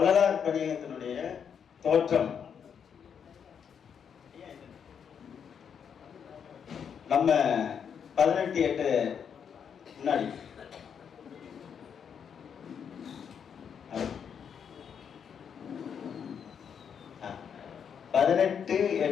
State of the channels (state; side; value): quieter; right; 7.5 dB